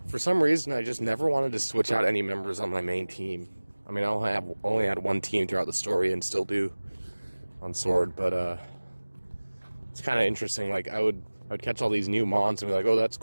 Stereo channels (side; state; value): both; inverted; correlation -1.00